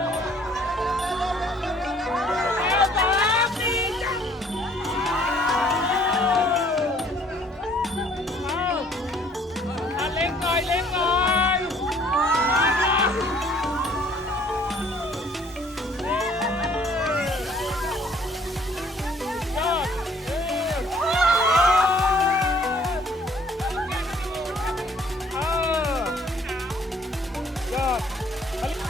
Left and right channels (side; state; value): both; normal; correlation 0.59